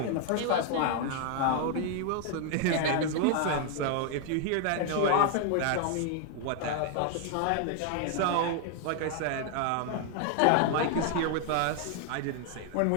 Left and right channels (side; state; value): both; different; correlation 0.00